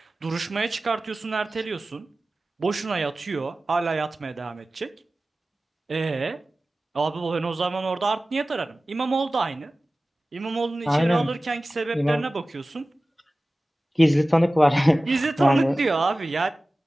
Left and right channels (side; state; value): both; normal; correlation 0.96